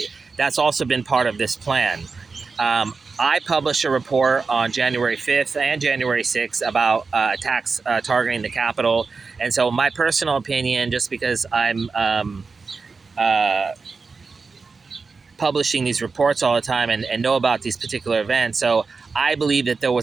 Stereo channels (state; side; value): quieter; left; 4.5 dB